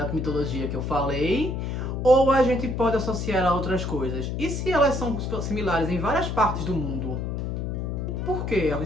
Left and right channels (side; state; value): left; noise; hum, 3 dB below the sound